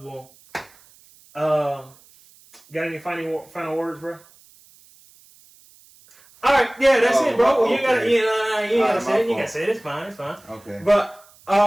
Got any final words, bro? All right, yeah, that's it, bro. Okay. You gotta say it. You gotta say it. It's fine. Okay. But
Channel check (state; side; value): noise; right; hiss, 27 dB below the sound